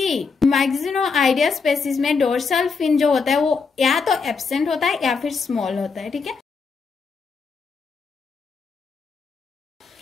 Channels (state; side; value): quieter; right; 5.0 dB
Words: मैक्सिनोआइडिया स्पेसीज में डोर्सल फिन जो होता है वो या तो एब्सेंट होता है या फिर स्मॉल होता है, ठीक है।